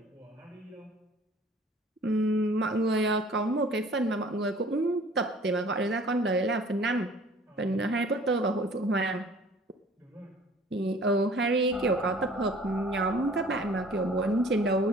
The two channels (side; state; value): both; normal; correlation 0.51